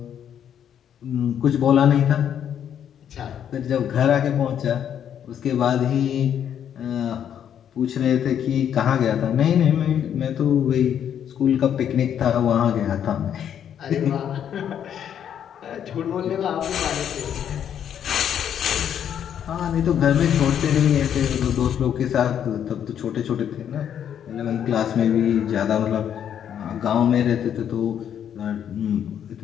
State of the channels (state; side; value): quieter; right; 9.2 dB